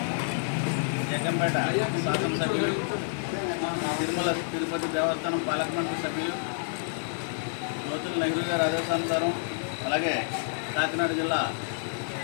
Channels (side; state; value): right; silent; 59 dB below the other